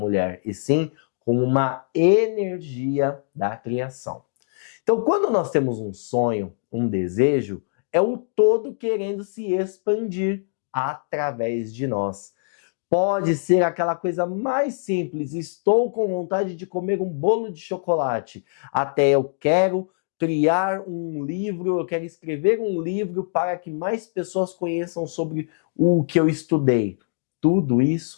e sim como uma energia da criação. Então, quando nós temos um sonho, um desejo, é o todo querendo se expandir através de nós. Pode ser aquela coisa mais simples, estou com vontade de comer um bolo de chocolate, até eu quero criar um livro, eu quero escrever um livro para que mais pessoas conheçam sobre o que eu estudei. Tudo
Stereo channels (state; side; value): silent; right; digital silence